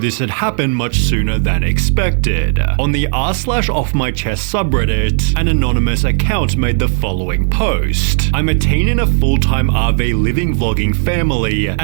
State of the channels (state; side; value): silent; left; 57 dB below the other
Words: had happened much sooner than expected. On the r/offmychest subreddit, an anonymous account made the following post. I'm a teen in a full-time RV living vlogging family,